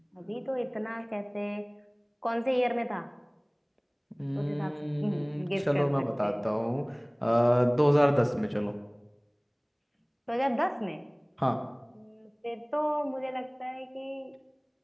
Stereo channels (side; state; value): both; identical; correlation 1.00